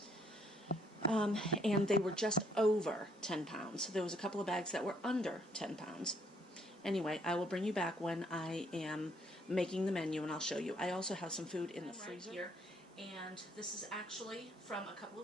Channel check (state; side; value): normal; both; correlation 0.68